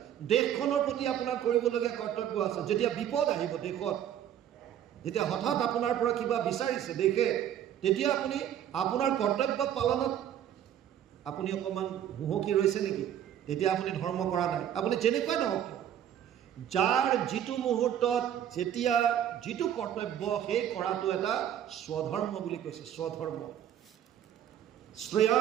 দেশখনৰ প্ৰতি আপোনাৰ কৰিবলগীয়া কৰ্তব্য আছে। যেতিয়া বিপদ আহিব দেশত, যেতিয়া হঠাৎ আপোনাৰ পৰা কিবা বিচাৰিছে দেশে, তেতিয়া আপুনি আপোনাৰ কৰ্তব্য পালনত আপুনি অকণমান হুহকি ৰৈছে নেকি? তেতিয়া আপুনি ধৰ্ম কৰা নাই। আপুনি যেনেকুৱা নহওক, যাৰ যিটো মুহূৰ্তত যেতিয়া যিটো কৰ্তব্য, সেই কৰাটো এটা স্বধৰ্ম বুলি কৈছে। স্বধৰ্ম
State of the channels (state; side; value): quieter; left; 10.4 dB